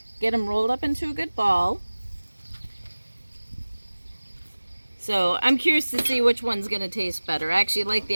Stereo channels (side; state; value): both; inverted; correlation -1.00